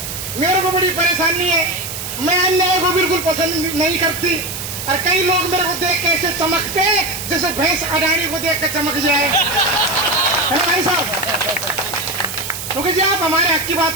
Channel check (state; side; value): noise; right; hiss, 7 dB below the sound